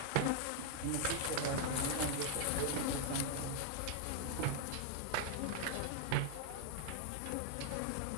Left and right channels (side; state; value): both; different; correlation 0.00